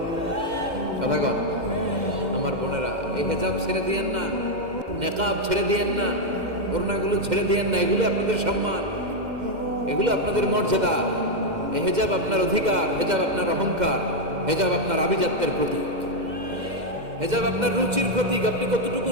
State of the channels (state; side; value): late; left; 2.1 ms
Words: কথা কন আমার বোনেরা, এই হিজাব ছেড়ে দিয়েন না, নেকাব ছেড়ে দিয়েন না, ওড়নাগুলো ছেড়ে দিয়েন না। এগুলো আপনাদের সম্মান, এগুলো আপনাদের মর্যাদা। এই হিজাব আপনার অধিকার, হিজাব আপনার অহংকার, হিজাব আপনার আভিজাত্যের প্রতীক, হিজাব আপনার রুচির প্রতীক। আপনি কতটুকু